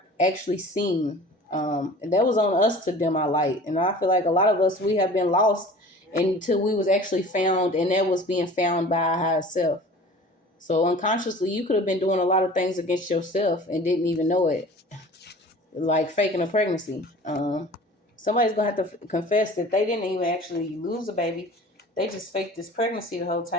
actually seen. And that was on us to dim our light, and I feel like a lot of us, we have been lost until we was actually found, and that was being found by our higher self. So unconsciously, you could have been doing a lot of things against yourself and didn't even know it, like faking a pregnancy. Somebody's gonna have to confess that they didn't even actually lose a baby. They just faked this pregnancy the whole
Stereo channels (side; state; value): both; normal; correlation 0.43